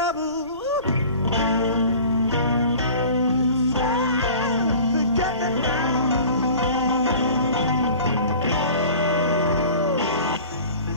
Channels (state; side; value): inverted; both; correlation -0.43